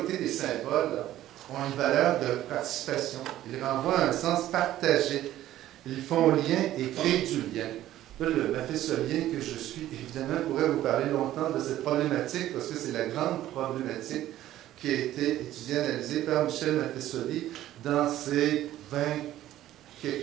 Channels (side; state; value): left; quieter; 13.6 dB